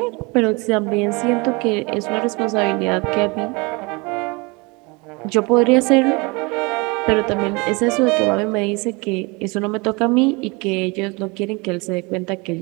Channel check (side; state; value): left; quieter; 27.4 dB